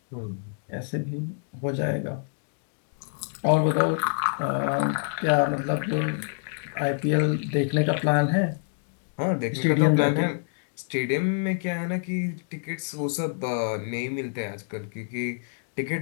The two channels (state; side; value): silent; right; digital silence